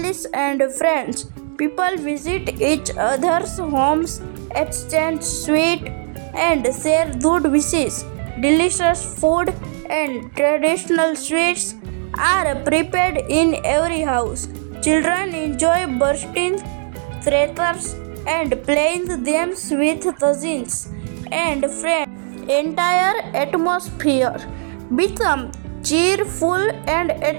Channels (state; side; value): silent; left; digital silence